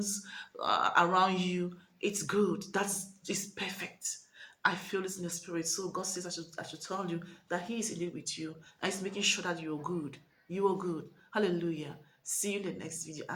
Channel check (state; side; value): identical; both; correlation 1.00